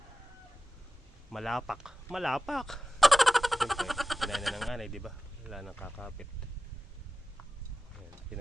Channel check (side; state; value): both; normal; correlation 0.95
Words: malapak siyempre kinain na ng anay, diba? Wala nang kakapit. Ayan,